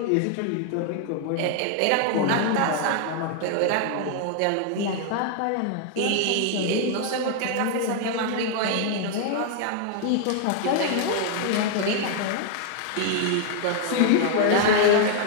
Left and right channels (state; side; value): different; both; correlation 0.00